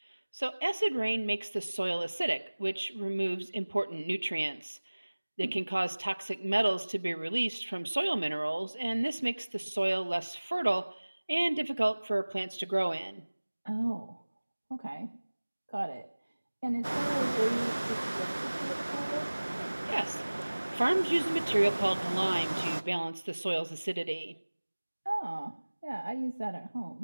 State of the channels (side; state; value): both; inverted; correlation -1.00